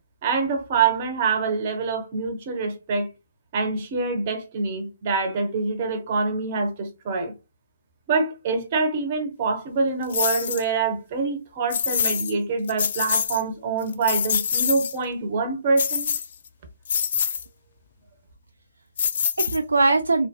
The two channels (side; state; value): both; inverted; correlation -0.61